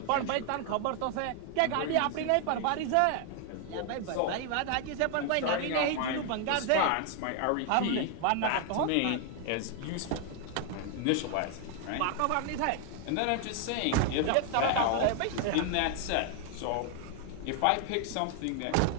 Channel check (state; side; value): different; both; correlation 0.00